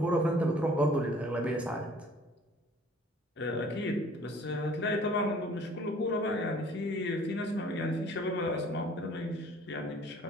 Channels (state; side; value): normal; both; correlation 0.53